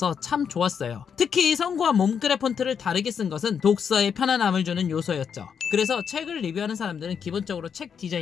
참 좋았어요. 특히 성구와 몸글의 폰트를 다르게 쓴 것은 독서에 편안함을 주는 요소였죠. 그래서 책을 리뷰하는 사람들은 기본적으로 책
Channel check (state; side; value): quieter; right; 7.1 dB